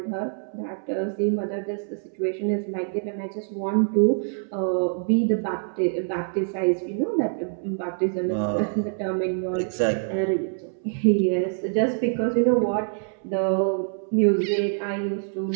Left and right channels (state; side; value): silent; left; 62 dB below the other